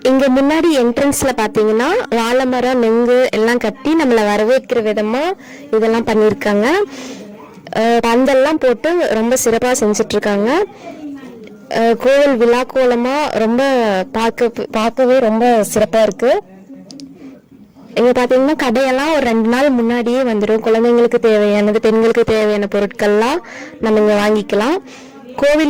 இங்கே முன்னாடி என்ட்ரன்ஸ்ல பார்த்தீங்கன்னா வாழை மரம், நொங்கு எல்லாம் கட்டி நம்மளை வரவேற்கிற விதமாக இதெல்லாம் பண்ணியிருக்காங்க. பந்தல்லாம் போட்டு ரொம்ப சிறப்பாக செஞ்சிட்ருக்காங்க. கோவில் விழா கோலமாக ரொம்ப பார்க்கவே ரொம்ப சிறப்பாக இருக்குது. இங்கே பார்த்தீங்கன்னா கடையெல்லாம் ஒரு 2 நாள் முன்னாடியே வந்துடும். குழந்தைங்களுக்கு தேவையானது, பெண்களுக்கு தேவையான பொருட்கள்லாம் நம்ம இங்கே வாங்கிக்கலாம்.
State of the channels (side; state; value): both; identical; correlation 1.00